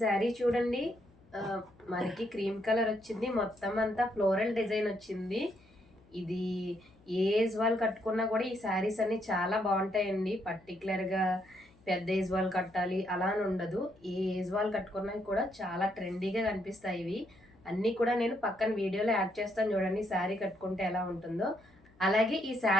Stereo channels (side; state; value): left; noise; hum, 29 dB below the sound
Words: చూడండి, మనకి క్రీమ్ కలర్ వచ్చింది, మొత్తం అంతా ఫ్లోరల్ డిజైన్ వచ్చింది. ఇది ఏ ఏజ్ వాళ్ళు కట్టుకున్నా కూడా ఈ శారీస్ అన్ని చాలా బాగుంటాయండి. పర్టికులర్గా పెద్ద ఏజ్ వాళ్ళు కట్టాలి అలా అని ఉండదు, ఏ ఏజ్ వాళ్ళు కట్టుకున్నా కూడా చాలా ట్రెండీగా కనిపిస్తాయి. ఇవి అన్నీ కూడా నేను పక్కన వీడియోలో యాడ్ చేస్తాను, చూడండి శారీ కట్టుకుంటే ఎలా ఉంటుందో. అలాగే ఈ